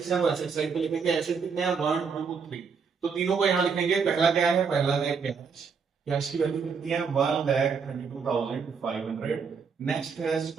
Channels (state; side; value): quieter; left; 5.8 dB